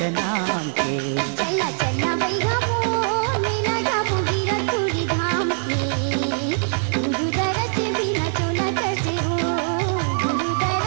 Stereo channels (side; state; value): left; silent; 62 dB below the other